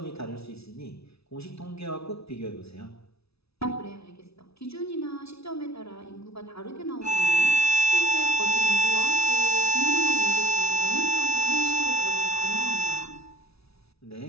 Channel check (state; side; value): late; right; 0.78 ms